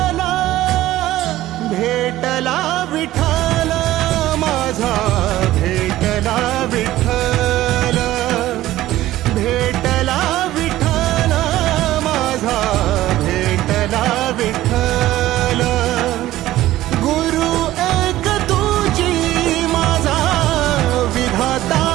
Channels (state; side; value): quieter; left; 15.2 dB